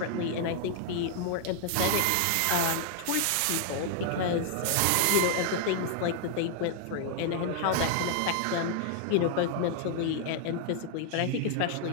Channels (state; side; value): different; both; correlation 0.00